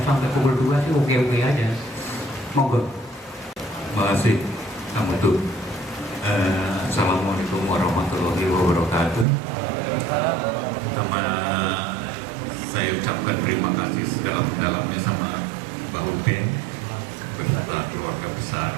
sampai pukul 2 sih oke-oke aja. Monggo. Terima kasih Kang Mutu. Assalamualaikum warahmatullahi wabarakatuh. Pertama saya ucapkan terima kasih sedalam-dalamnya sama Mbak Uben beserta keluarga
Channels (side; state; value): left; drops out; at 9.2 s